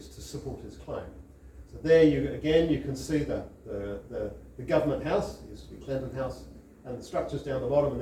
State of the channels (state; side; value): identical; both; correlation 1.00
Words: to support his claim. So there you can see the government house, it used to be Clinton House, and the structures down the bottom, and